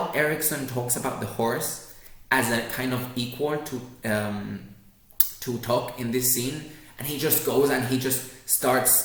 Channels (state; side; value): identical; both; correlation 1.00